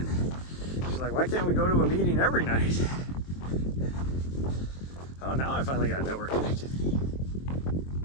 She's like, why can't we go to a meeting every night? Oh, now I finally got network connectivity.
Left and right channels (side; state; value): right; late; 23 ms